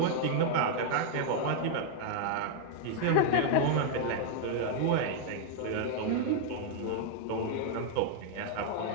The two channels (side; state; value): both; different; correlation -0.01